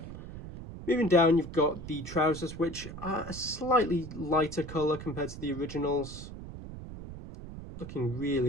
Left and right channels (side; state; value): right; noise; rumble, 11 dB below the sound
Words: Moving down, you've got the trousers, which are a slightly lighter colour compared to the originals. Looking